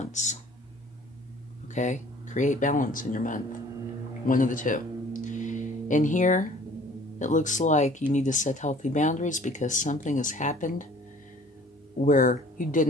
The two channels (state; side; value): normal; both; correlation 0.52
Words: Okay? Create balance in your month. One of the two. In here, it looks like you need to set healthy boundaries because something has happened where you